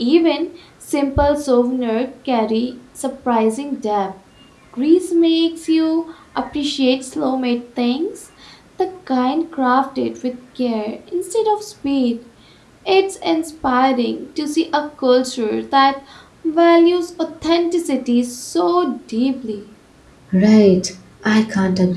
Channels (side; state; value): both; identical; correlation 1.00